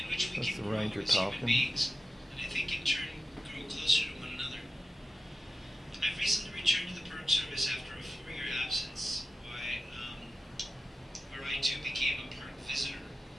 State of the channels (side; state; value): both; normal; correlation 0.94